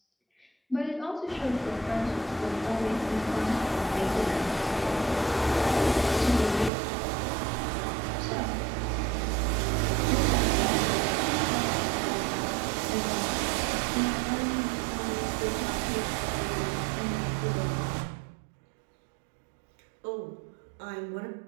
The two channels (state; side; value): drops out; left; at 6.7 s